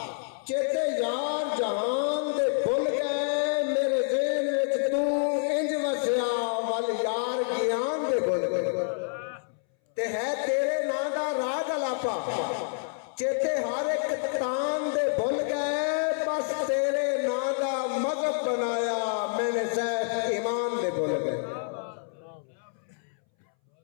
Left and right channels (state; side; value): silent; right; 59 dB below the other